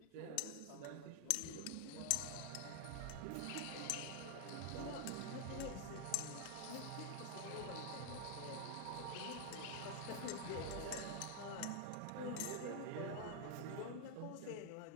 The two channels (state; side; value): different; both; correlation 0.00